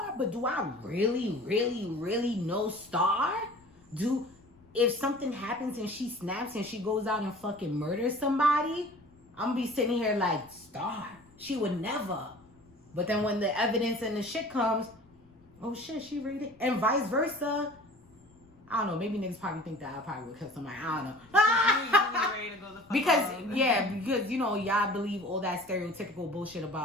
but do I really, really, really know Star? If something happens and she snaps and she goes out and fucking murders somebody, I'm gonna be sitting here like, Star, she would never. But then when the evidence and the shit comes, oh shit, she read it. And vice versa. I don't know, maybe niggas probably think that I probably would kill somebody. I don't know. Ready to go the fuck because, you know, y'all believe all that stereotypical bullshit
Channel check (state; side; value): noise; left; rumble, 28 dB below the sound